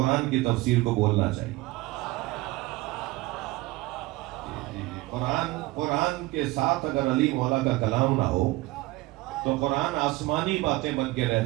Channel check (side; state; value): left; quieter; 20.2 dB